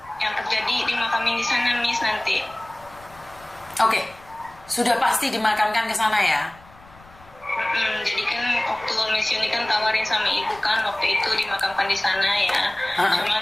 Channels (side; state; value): left; noise; rumble, 25 dB below the sound